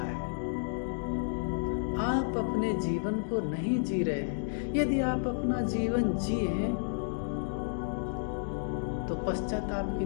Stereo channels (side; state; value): right; silent; digital silence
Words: आप अपने जीवन को नहीं जी रहे हैं। यदि आप अपना जीवन जिए तो पश्चाताप की